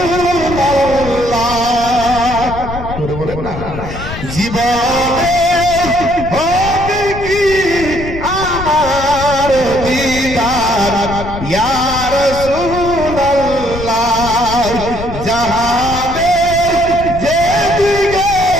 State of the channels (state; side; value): noise; left; rumble, 9 dB below the sound